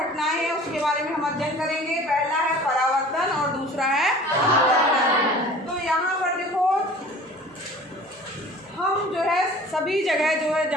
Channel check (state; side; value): normal; both; correlation 0.45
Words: हैं उसके बारे में हम अध्ययन करेंगे। पहला है परावर्तन और दूसरा है अपवर्तन। तो यहाँ पर देखो, हम जो है सभी जगह जो है